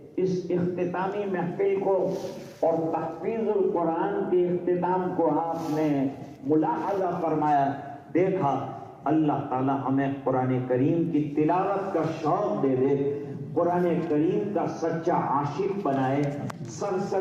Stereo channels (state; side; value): identical; both; correlation 1.00